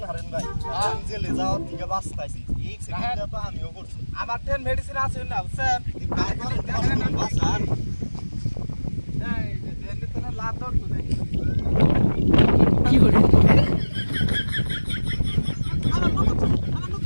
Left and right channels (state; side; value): inverted; both; correlation -1.00